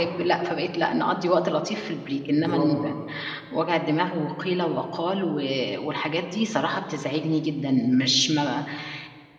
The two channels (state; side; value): identical; both; correlation 1.00